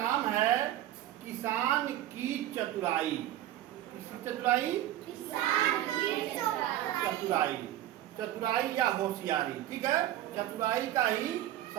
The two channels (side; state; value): left; quieter; 13.3 dB